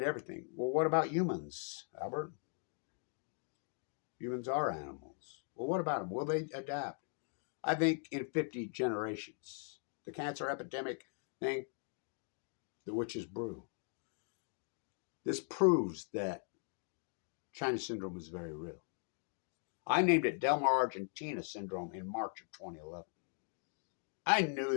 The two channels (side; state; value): right; silent; 51 dB below the other